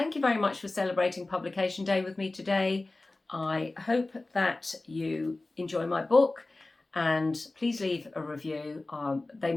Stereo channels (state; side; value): quieter; right; 3.1 dB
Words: you very much for celebrating Publication Day with me today. I hope that you enjoy my book, and please leave a review. They